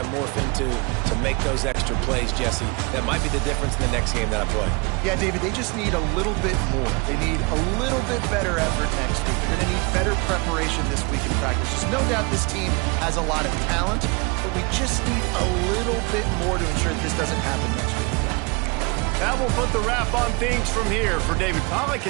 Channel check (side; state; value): left; quieter; 30.1 dB